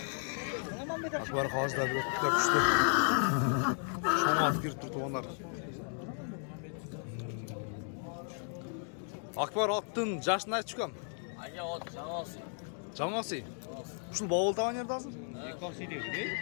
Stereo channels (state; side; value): silent; right; 55 dB below the other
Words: Akbar hozirda bir o'tib kuchli shamoat kirib turibdi onlar. Akbar otdin jashni aytishkam. Aka ot jamoasi. Jamoasi. Şu bavul tavan yerda hozir?